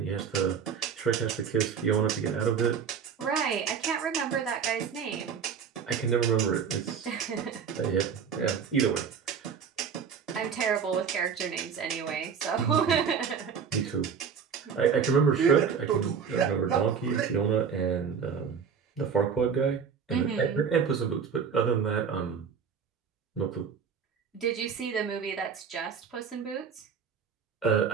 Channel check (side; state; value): left; quieter; 6.7 dB